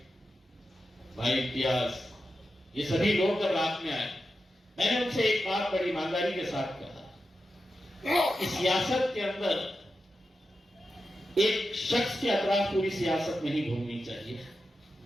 भाई इम्तियाज, ये सभी लोग जब रात में आए, मैंने उनसे एक बात बड़ी ईमानदारी के साथ कहा, इस सियासत के अंदर एक शख्स के अतराफ पूरी सियासत नहीं घूमनी चाहिए।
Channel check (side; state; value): both; normal; correlation 0.90